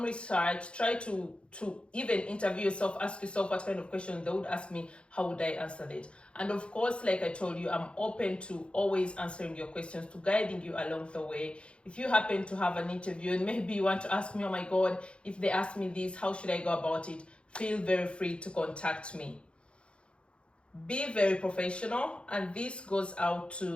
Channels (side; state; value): right; late; 0.057 ms